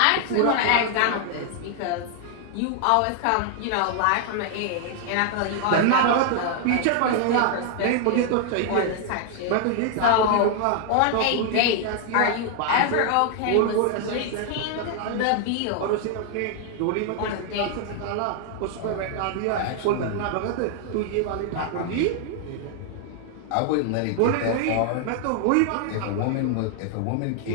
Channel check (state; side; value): different; both; correlation 0.00